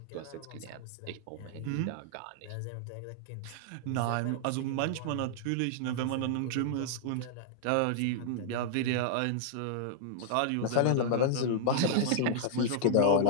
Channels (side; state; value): both; different; correlation -0.01